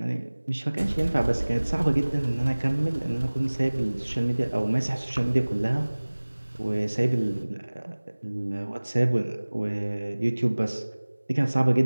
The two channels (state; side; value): inverted; both; correlation -1.00